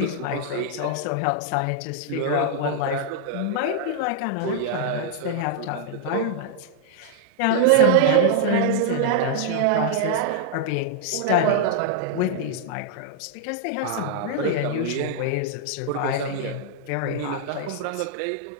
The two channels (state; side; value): different; both; correlation -0.01